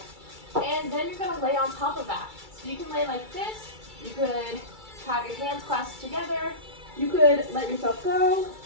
And then you're gonna lay on top of that. So you can lay like this, you could have your hands clasped together, you could let yourself go.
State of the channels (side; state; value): left; late; 2.3 ms